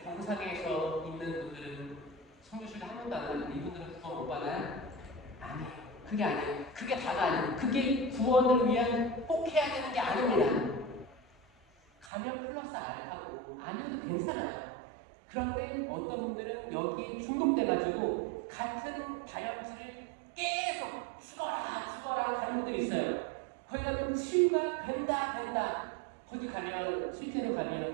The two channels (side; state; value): left; drops out; at 12.1 s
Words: 병상에서 있는 분들은 성교실에 한 번도 안 가는데 이분들은 구원 못 받아요? 아니에요. 그게 아니에요. 그게 다가 아니에요. 그게 구원을 위한 꼭 해야 되는 게 아닙니다. 가면 플러스 알파고 아니어도 괜찮아요. 그런데 어떤 분들은 여기에 중독돼가지고 같은 다혈질을 계속 죽어라 가는 분들이 있어요. 거기 가면 치유가 된다. 거기 가면 실제로